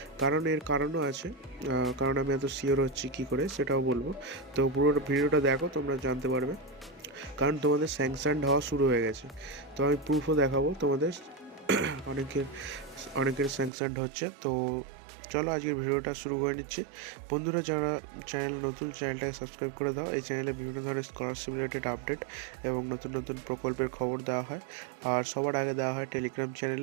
কারণ এর কারণও আছে, কারণ আমি এত শিওর হচ্ছি কী করে সেটাও বলবো। তো পুরো ভিডিওটা দেখো, তোমরা জানতে পারবে। কারণ তোমাদের স্যাংশনড হওয়া শুরু হয়ে গেছে, তো আমি প্রুফও দেখাবো তোমাদের। অনেকের স্যাংশনড হচ্ছে। তো চলো আজকের ভিডিওটা শুরু করে নিচ্ছি। বন্ধুরা, যারা চ্যানেল নতুন, চ্যানেলটাকে সাবস্ক্রাইব করে দাও। এই চ্যানেলে বিভিন্ন ধরনের স্কলারশিপ রিলেটেড আপডেট এবং নতুন নতুন প্রকল্পের খবর দেওয়া হয়, আর সবার আগে দেওয়া হয় টেলিগ্রাম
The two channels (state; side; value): drops out; left; at 13.7 s